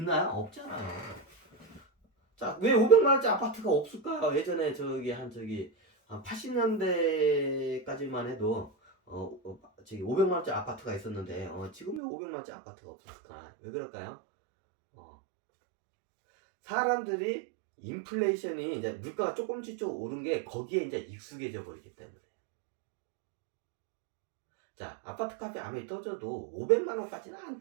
없잖아요. 자, 왜 500만 원짜리 아파트가 없을까요? 예전에 한 80년대까지만 해도 500만 원짜리 아파트가 있었는데 지금 왜 500만 원짜리 아파트가 없었을까? 왜 그럴까요? 사람들이 인플레이션이 이제 물가가 조금씩 오른 게 거기에 이제 익숙해져 버리기 때문에. 자, 아파트 값이 아무리 떨어져도 500만 원까지는 안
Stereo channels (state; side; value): drops out; left; at 12.0 s